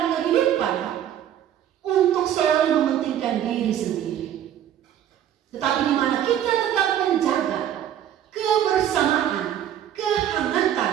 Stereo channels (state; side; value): quieter; left; 10.6 dB